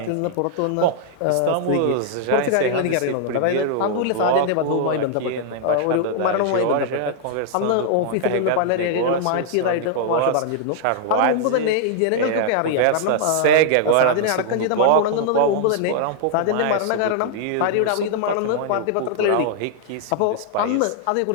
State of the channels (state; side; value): different; both; correlation -0.01